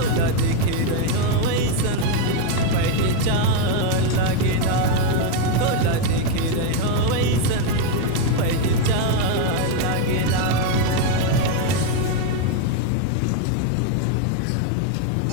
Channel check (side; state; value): both; different; correlation 0.02